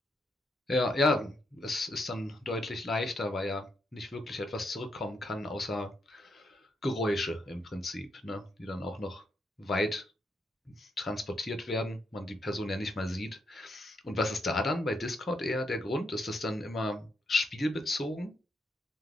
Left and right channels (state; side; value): normal; both; correlation 0.79